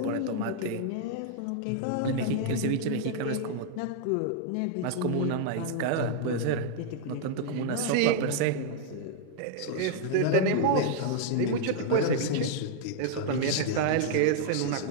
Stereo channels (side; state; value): both; different; correlation -0.01